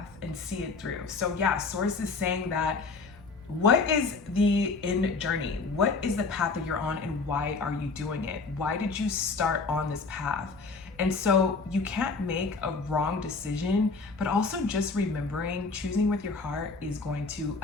and see it through. So yeah, Source is saying that what is the end journey? What is the path that you're on, and why are you doing it? Why did you start on this path? And so you can't make a wrong decision, but also just remembering choosing with your heart is going to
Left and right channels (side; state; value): right; quieter; 4.2 dB